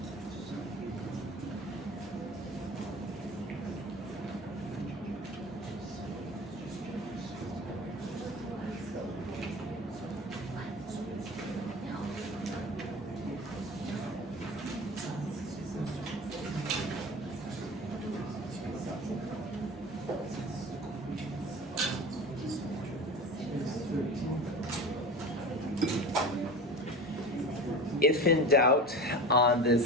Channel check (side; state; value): both; normal; correlation 0.33